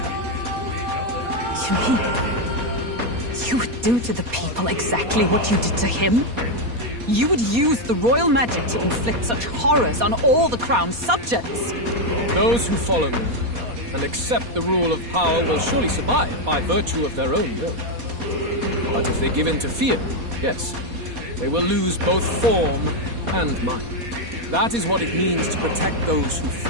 You mean you would do to the people exactly what you did to him? You would use the royal magic to inflict such horrors on all the crown's subjects? Those who follow me and accept the rule of power will surely survive by virtue of their own will. But if they give in to fear, yes, they will lose both form and mind. That is what it means to protect those who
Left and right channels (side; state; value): left; late; 4.2 ms